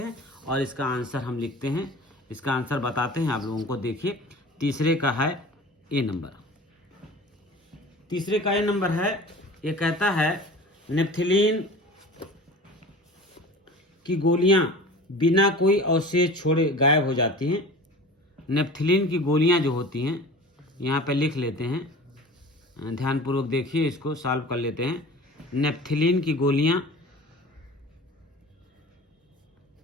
और इसका आंसर हम लिखते हैं, इसका आंसर बताते हैं आप लोगों को। देखिए तीसरे का है ए नंबर, तीसरे का ए नंबर है, ये कहता है नेप्थलीन की गोलियां बिना कोई अवशेष छोड़े गायब हो जाती हैं। नेप्थिलीन की गोलियां जो होती हैं, यहाँ पे लिख लेते हैं, ध्यानपूर्वक देखिए, इसको सॉल्व कर लेते हैं। नेप्थिलीन की गोलियां,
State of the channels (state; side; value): normal; both; correlation 0.39